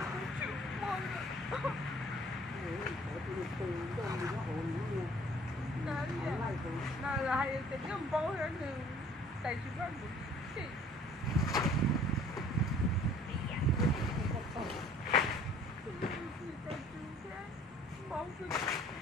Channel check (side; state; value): both; normal; correlation 0.54